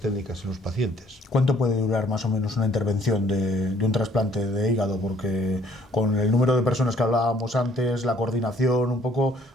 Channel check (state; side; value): normal; both; correlation 0.61